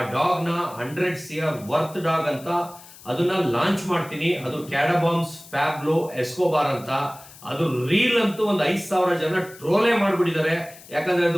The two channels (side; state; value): left; noise; hiss, 20 dB below the sound